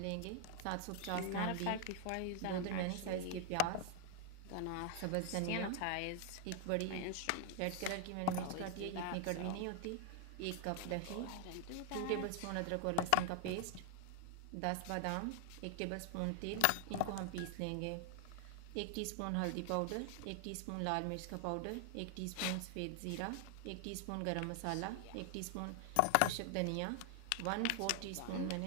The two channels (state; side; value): different; both; correlation 0.00